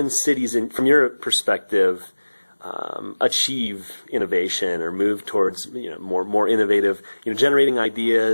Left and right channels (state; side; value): inverted; both; correlation -1.00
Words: cities, from your perspective, achieve innovation or move towards more innovative, generating